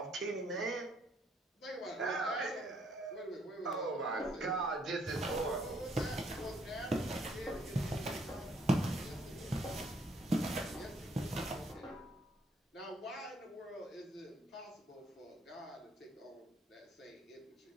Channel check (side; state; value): both; normal; correlation 0.68